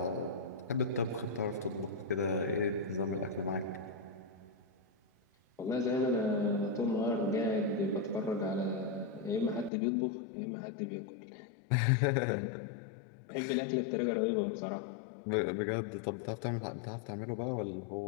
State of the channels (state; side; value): drops out; right; at 9.7 s